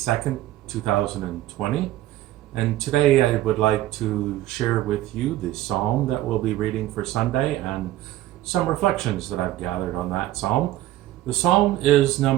2020. And today I would like to share with you the psalm that we'll be reading for Sunday and some reflections that I've gathered on that psalm. The psalm is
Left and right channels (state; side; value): quieter; left; 14.9 dB